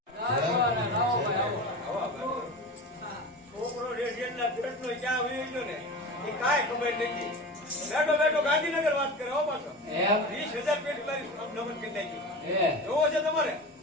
છોકરો રેડિયનના પેટનો ક્યાં વહી ગયો ને એ કાંઈ ખબર નથી. બેઠો બેઠો ગાંધીનગર વાત કરે હો પાછો. 20,000 પેટ મારી નમન કરી નાખી. જોવો છે તમારે?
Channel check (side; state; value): both; normal; correlation 0.30